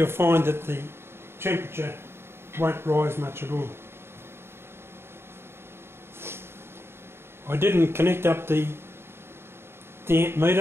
find that the temperature won't rise much at all. I didn't connect up the amp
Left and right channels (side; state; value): left; late; 0.12 ms